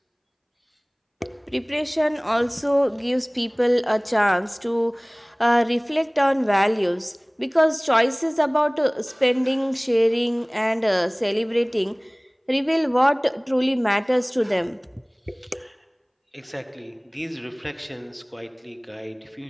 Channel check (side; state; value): both; identical; correlation 1.00